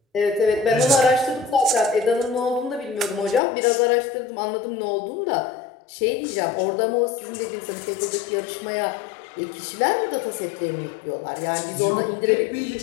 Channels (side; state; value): right; drops out; at 3.4 s